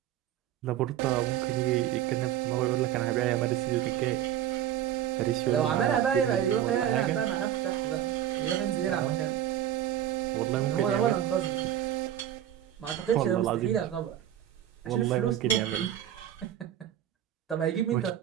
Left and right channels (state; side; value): quieter; left; 11.3 dB